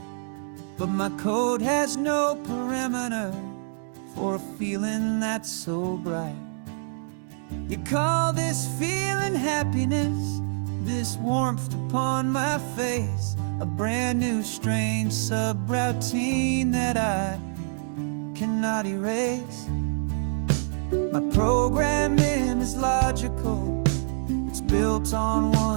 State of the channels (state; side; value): silent; left; digital silence